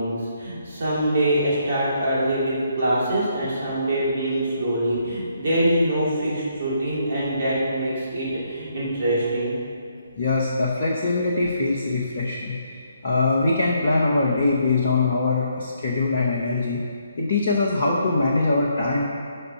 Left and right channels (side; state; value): both; inverted; correlation -0.72